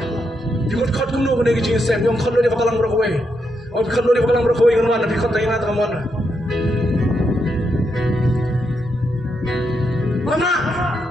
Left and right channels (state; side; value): normal; both; correlation 0.81